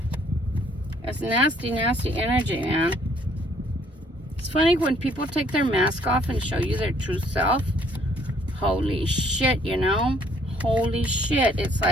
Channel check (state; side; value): normal; both; correlation 0.63